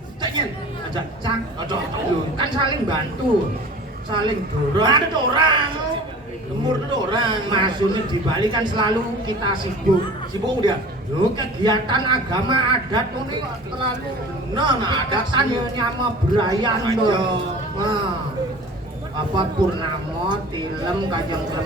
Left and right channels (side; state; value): both; normal; correlation 0.42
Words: caknya aja cak aduh kan saling bantu saling dorong ada orang lembur itu orang maksudnya di Bali kan selalu kita sibuk dia loh kegiatan agama adat ini terlalu ada kan ya nyama berayan nah apa purnama tilem kajang